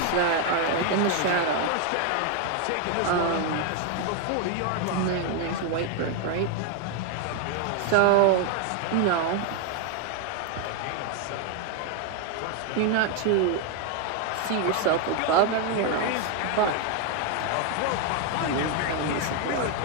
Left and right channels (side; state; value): both; different; correlation 0.01